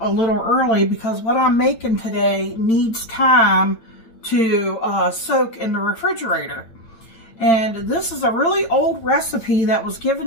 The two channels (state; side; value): late; right; 8.9 ms